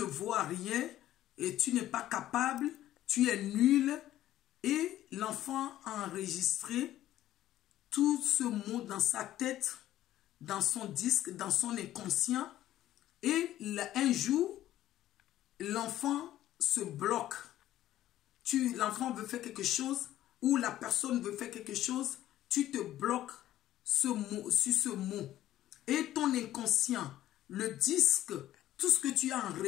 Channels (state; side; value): quieter; right; 13.5 dB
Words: vaux rien, et tu n'es pas capable, tu es nul. Et l'enfant a enregistré tout ce mot dans sa tête, dans son disque, dans son inconscient. Et un jour, l'enfant se bloque. L'enfant veut faire quelque chose ou la personne veut faire quelque chose, tu te bloques sur ce mot. Et ton inconscient, le disque, tout ce que tu as